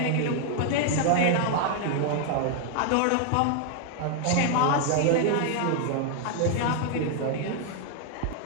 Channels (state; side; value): different; both; correlation 0.00